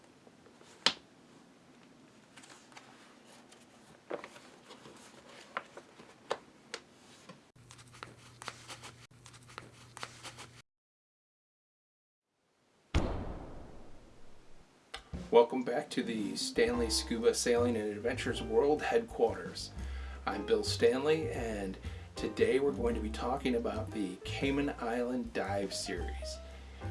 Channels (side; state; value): both; identical; correlation 1.00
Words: Welcome back to the Stanley Scuba Sailing and Adventures World Headquarters. I'm Bill Stanley, and today we're going to be talking about the Cayman Island Dive Series.